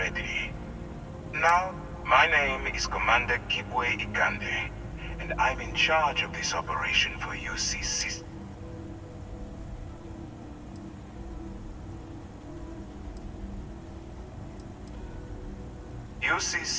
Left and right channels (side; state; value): both; identical; correlation 1.00